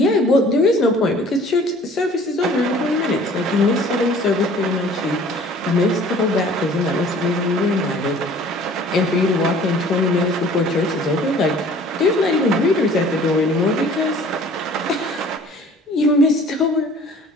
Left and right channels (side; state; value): both; normal; correlation 0.51